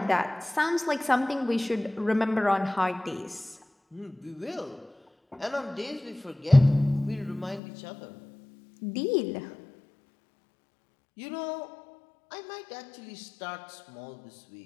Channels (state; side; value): drops out; right; at 7.6 s